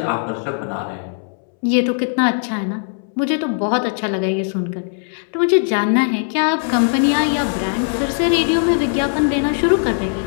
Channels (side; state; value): right; silent; 66 dB below the other